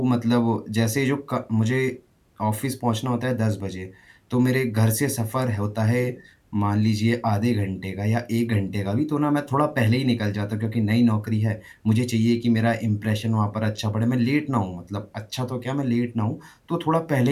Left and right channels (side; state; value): both; identical; correlation 1.00